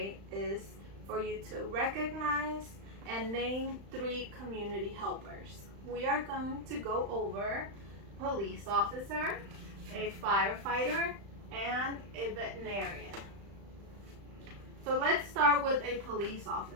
is for you to recognize and name 3 community helpers. We are going to go over police officer, a firefighter, and a veterinarian. So let's start with a police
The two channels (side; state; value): left; late; 35 ms